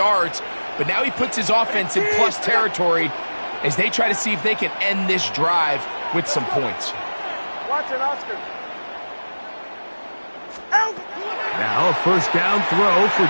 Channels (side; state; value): both; inverted; correlation -1.00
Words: but now he puts his offense in plus territory as they try to see if they can end this drive with some points. Watch it, Oscar. Now a first down throw for